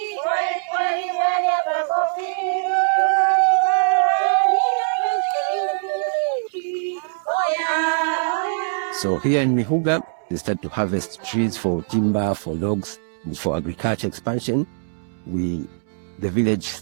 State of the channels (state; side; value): silent; left; digital silence